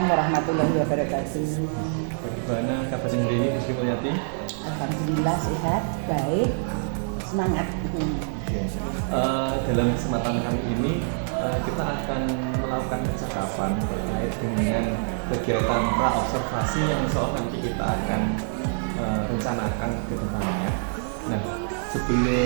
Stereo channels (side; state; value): left; silent; digital silence